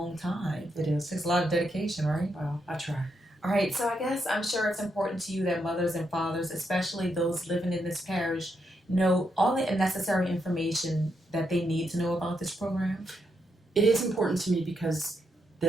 time. It is. Takes a lot of dedication, right? Well, I try. All right, so I guess I'm sure it's important to you that mothers and fathers, especially those living in this parish, know all the necessary information that they need to know about this program. It is important to me because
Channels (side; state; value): both; normal; correlation 0.81